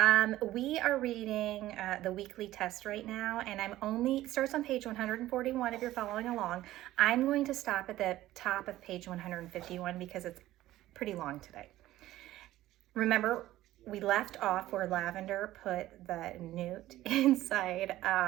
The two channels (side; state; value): left; quieter; 15.2 dB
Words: We are reading the weekly test right now, and starts on page 141 if you're following along. I'm going to stop at the top of page 151 because it's pretty long today. Remember, we left off where Lavender put the newt inside